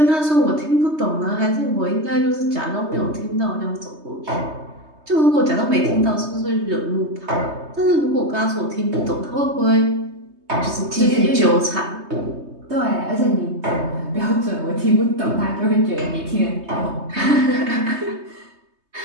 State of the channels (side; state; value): left; late; 3.2 ms